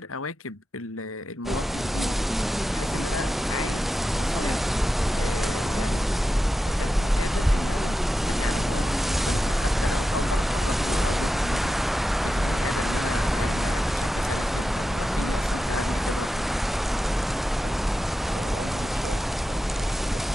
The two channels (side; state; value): both; normal; correlation 0.91